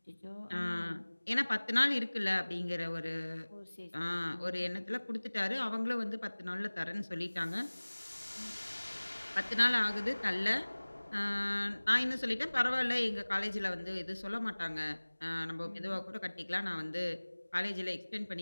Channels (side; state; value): both; inverted; correlation -1.00